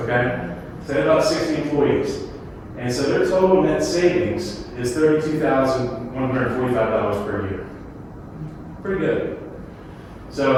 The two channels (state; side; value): identical; both; correlation 1.00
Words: okay? So they have about 60 employees. And so their total net savings is $32,145 per year. Pretty good.